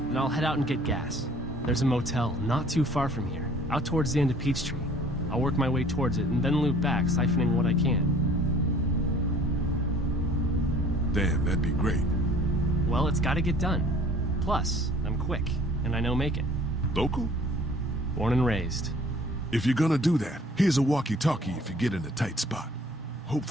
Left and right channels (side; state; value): both; normal; correlation 0.52